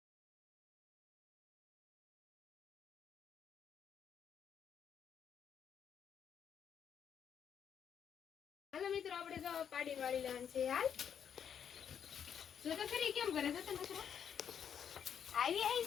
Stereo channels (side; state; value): right; quieter; 8.2 dB